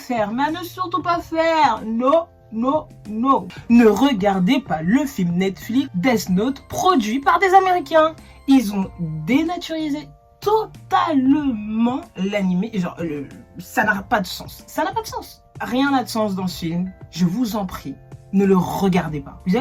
mais à ne surtout pas faire, non. Ne regardez pas le film Netflix Death Note produit par des Américains. Ils ont dénaturisé totalement l'animé. Genre, ça n'a pas de sens. Ça n'a pas de sens. Rien n'a de sens dans ce film. Je vous en prie, ne le regardez pas. Vous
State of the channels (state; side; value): identical; both; correlation 1.00